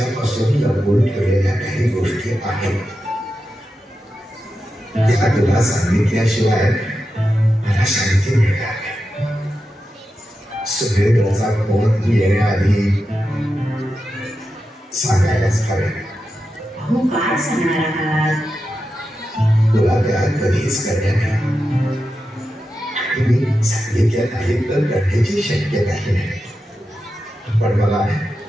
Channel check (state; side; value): normal; both; correlation 0.90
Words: लपवून ठेवलेल्या काही गोष्टी आहेत, त्या तुला सांगितल्याशिवाय मला शांती मिळणार नाही. सुरेंद्रचा फोन येण्याआधी सांगायलाच हवे. अहो काय सांगणार आहात? तुला त्या कधीच करण्यात नाही. मी सांगितल्या नाही तर करण्याची शक्यताही नाही. पण मला